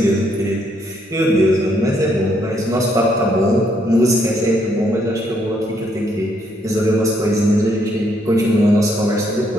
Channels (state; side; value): normal; both; correlation 0.72